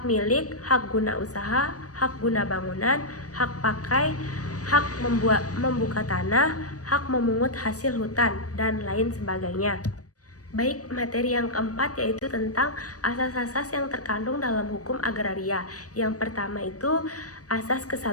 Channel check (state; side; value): late; right; 0.67 ms